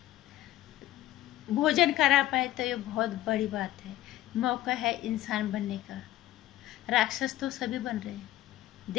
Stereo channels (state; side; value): quieter; right; 14.8 dB